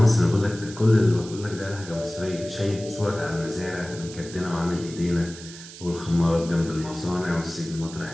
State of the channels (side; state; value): right; noise; hiss, 15 dB below the sound